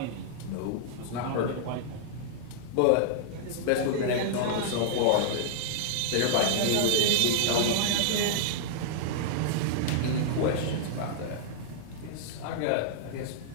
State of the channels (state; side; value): different; both; correlation -0.01